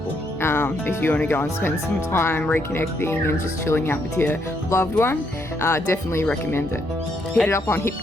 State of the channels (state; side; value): normal; both; correlation 0.75